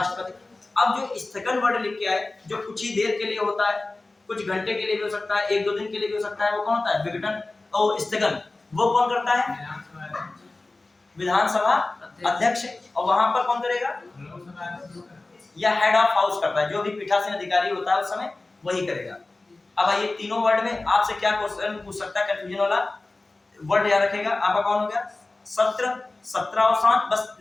अब जो स्थगन वर्ड लिख के आए, जो कुछ ही देर के लिए होता है, कुछ घंटे के लिए भी हो सकता है, 1-2 दिन के लिए भी हो सकता है, वो कौन होता है, विघटन और स्थगन। वो कौन करता है, विधानसभा अध्यक्ष। और वहां पर कौन करेगा, या हेड ऑफ हाउस करता है, जो भी पीठासीन अधिकारी होता है उस समय वही करेगा। अब ये तीनों वर्ड में आपसे क्या क्वेश्चन पूछ सकता है, कंफ्यूजन वाला वर्ड याद रखेगा आपका, कौन हो गया, सत्र, 17 और 7 बस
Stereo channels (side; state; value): right; quieter; 3.2 dB